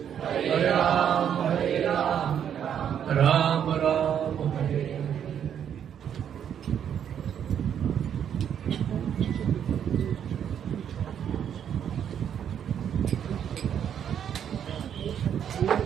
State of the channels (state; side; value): quieter; left; 8.9 dB